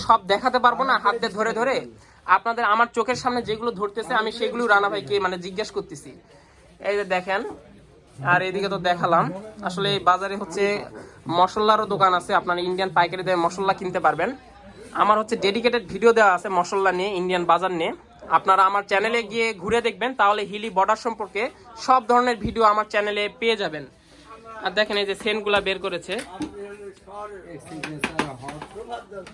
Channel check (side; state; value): both; identical; correlation 1.00